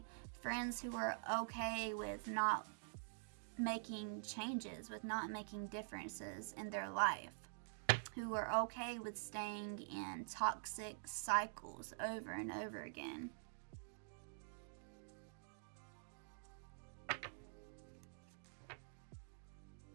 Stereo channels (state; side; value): silent; left; digital silence